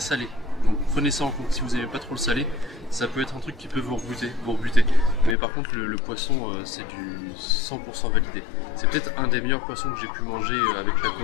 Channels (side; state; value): right; drops out; at 5.4 s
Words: Donc prenez ça en compte, si vous n'aimez pas trop le salé, ça peut être un truc qui peut vous rebuter. Mais par contre, le poisson, c'est du 100% validé. C'est peut-être un des meilleurs poissons que j'ai pu manger avec la